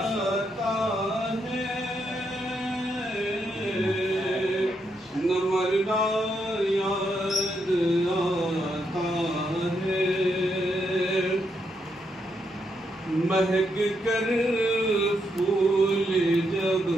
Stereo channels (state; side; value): normal; both; correlation 0.79